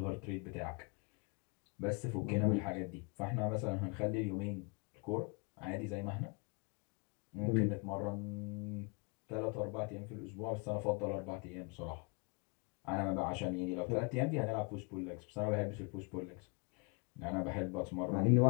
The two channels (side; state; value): right; quieter; 33.3 dB